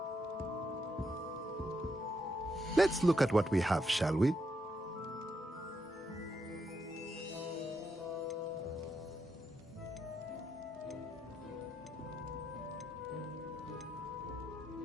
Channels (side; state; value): both; normal; correlation 0.80